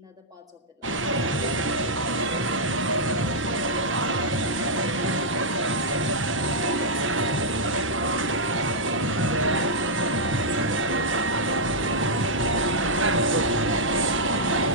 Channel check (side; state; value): both; normal; correlation -0.07